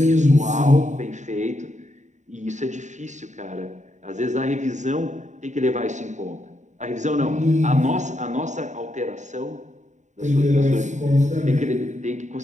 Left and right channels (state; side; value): late; left; 0.35 ms